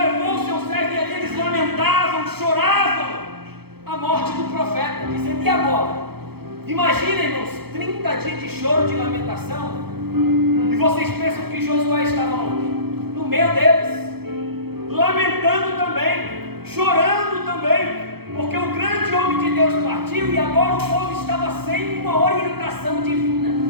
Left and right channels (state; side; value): late; left; 0.96 ms